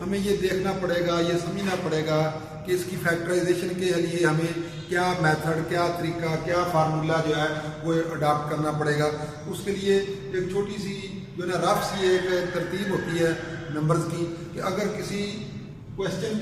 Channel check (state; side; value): identical; both; correlation 1.00